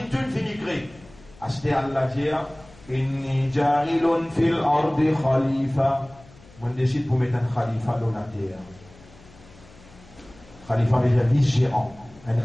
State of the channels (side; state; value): left; noise; hum, 24 dB below the sound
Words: tout finit créer. À ce terre, Allah dit, inni jarilun fil ardi khalifa. On décide pour mettre un khalifa dans la terre. Khalifa veut dire vice-gérant, un